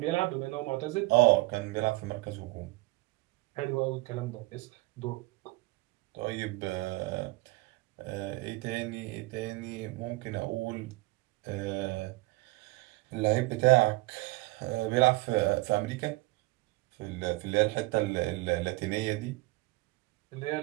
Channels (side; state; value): left; quieter; 21.7 dB